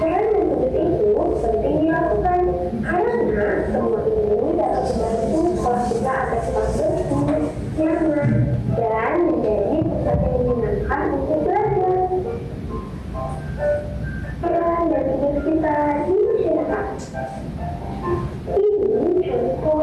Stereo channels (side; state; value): both; identical; correlation 1.00